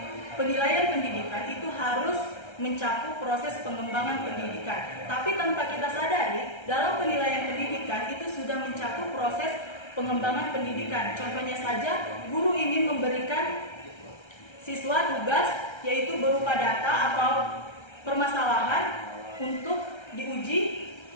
penilaian pendidikan itu harus mencakup proses pengembangan pendidikan. Tapi tanpa kita sadari, dalam penilaian pendidikan itu sudah mencakup proses pengembangan pendidikan. Contohnya saja, guru ingin memberikan siswa tugas yaitu berupa data atau permasalahan untuk diuji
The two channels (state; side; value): late; right; 1.3 ms